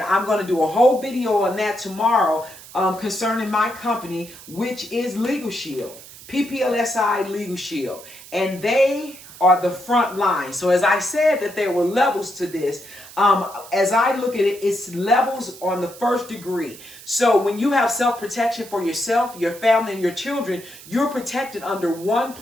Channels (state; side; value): noise; right; hiss, 18 dB below the sound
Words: I'm going to do a whole video on that tomorrow concerning my company, which is Legal Shield, PPLSI Legal Shield. And they are the front line. So as I said that there were levels to this, as I look at it, it's levels on the first degree. So when you have self-protection for yourself, your family, and your children, you're protected under one